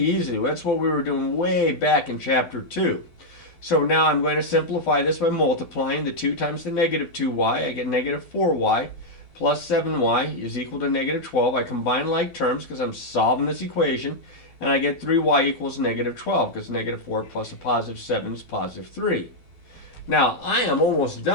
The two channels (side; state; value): right; late; 12 ms